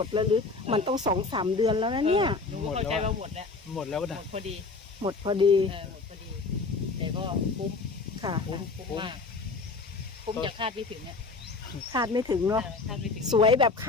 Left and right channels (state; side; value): quieter; right; 4.0 dB